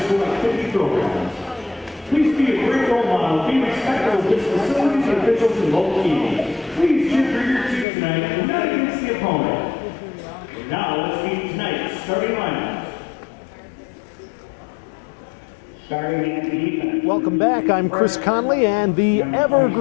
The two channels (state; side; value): drops out; right; at 7.9 s